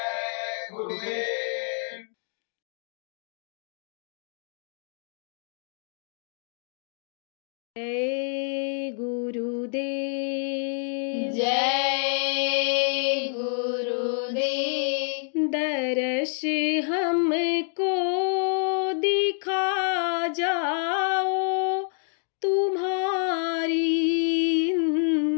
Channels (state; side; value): silent; right; 55 dB below the other